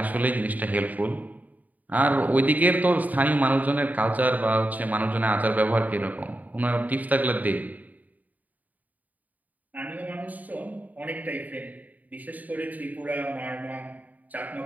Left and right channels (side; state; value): left; late; 0.077 ms